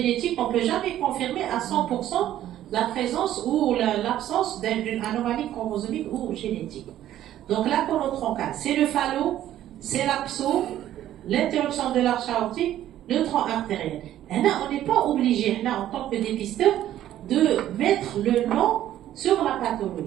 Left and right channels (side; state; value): left; quieter; 12.4 dB